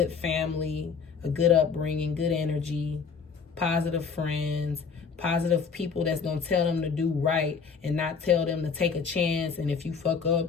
family, a good upbringing, good energy, positive friends, positive people that's going to tell them to do right and not tell them to take a chance. And if you fuck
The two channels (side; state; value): right; quieter; 5.8 dB